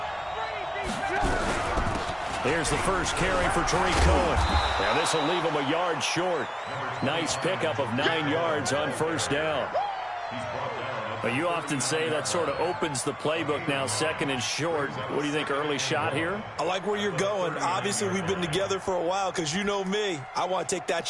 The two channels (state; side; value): identical; both; correlation 1.00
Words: Here's the first carry for Tariq Cohen. Now this will leave him a yard short. Nice pickup of 9 yards on 1st down. But you often say that sort of opens the playbook now, 2nd and short. What do you think, early shot here? I like where you're going. Obviously, we've been together for a while because you know me. I want to take that